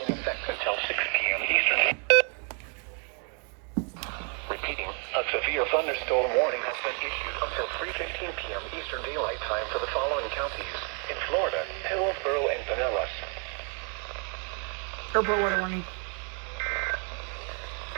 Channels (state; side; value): quieter; left; 36.4 dB